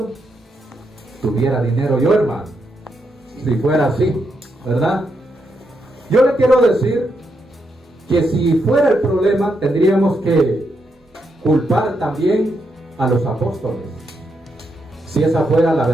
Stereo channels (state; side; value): normal; both; correlation 0.81